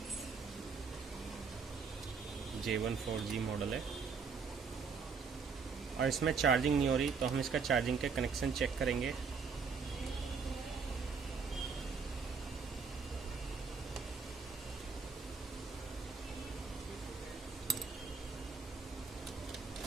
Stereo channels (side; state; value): left; quieter; 5.4 dB